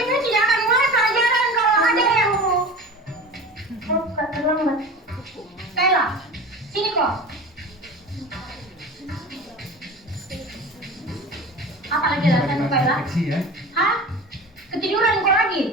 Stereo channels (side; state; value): both; normal; correlation 0.34